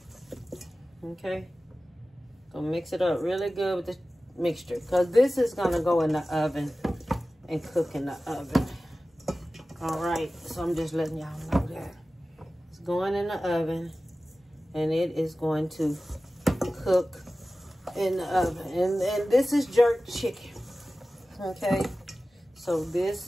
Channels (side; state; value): both; normal; correlation 0.96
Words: Okay? Gonna mix it up really good with the mixture. Because this is going to go in the oven and cook in the oven. All right, so I'm just letting y'all know that. It's going in the oven, and it is going to cook in the oven. And this is jerk chicken, okay? So